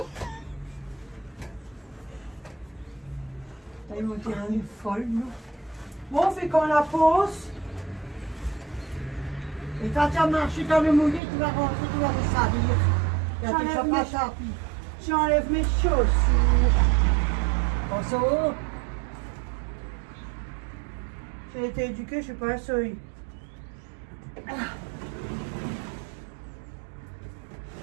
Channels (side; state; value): left; drops out; at 11.2 s